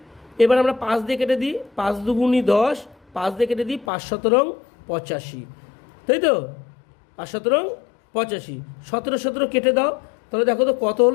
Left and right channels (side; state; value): right; drops out; at 3.9 s